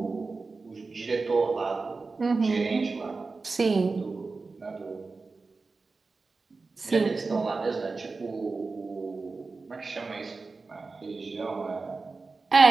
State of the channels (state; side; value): quieter; left; 4.0 dB